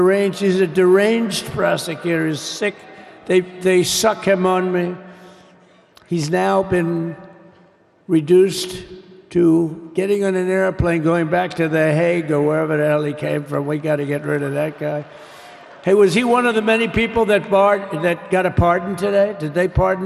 He's a deranged prosecutor. He's sick. They suck him on me. He's now been reduced to getting on an airplane, going back to The Hague or wherever the hell he came from. We got to get rid of that guy. Hey, was he one of the many people that got a pardon today? Did they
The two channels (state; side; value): identical; both; correlation 1.00